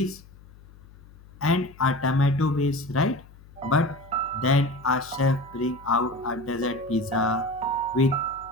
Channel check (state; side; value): noise; left; hum, 22 dB below the sound